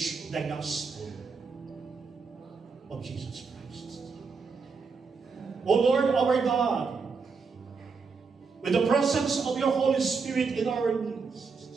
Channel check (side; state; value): left; quieter; 5.0 dB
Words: the gospel of Jesus Christ. O Lord our God, with the presence of your Holy Spirit in our